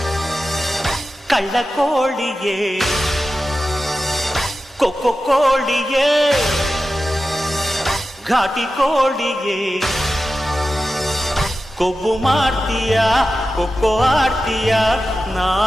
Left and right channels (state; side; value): normal; both; correlation 0.93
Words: ಕಳ್ಳ ಕೋಳಿಯೇ ಕೊಕ್ಕೊ ಕೋಳಿಯೇ ಘಾಟಿ ಕೋಳಿಯೇ ಕೊಬ್ಬು ಮಾಡ್ತೀಯ ಕೊಕ್ಕೊ ಆಡ್ತೀಯ